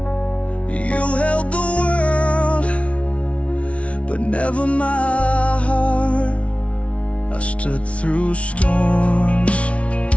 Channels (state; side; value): late; right; 0.063 ms